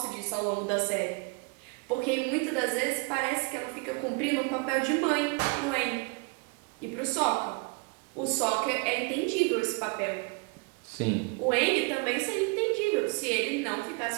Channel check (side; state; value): left; quieter; 31.0 dB